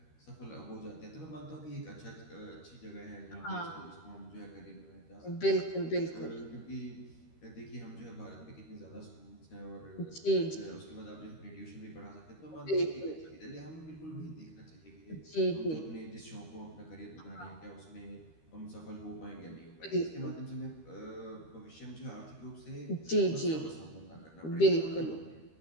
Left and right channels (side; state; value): right; late; 13 ms